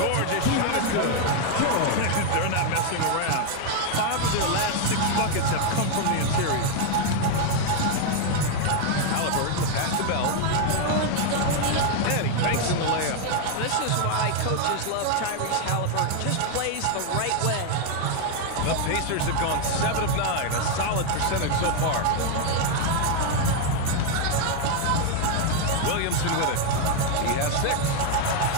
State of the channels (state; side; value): different; both; correlation 0.00